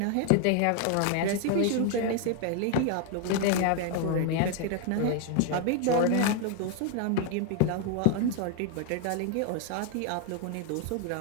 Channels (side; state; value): both; different; correlation 0.00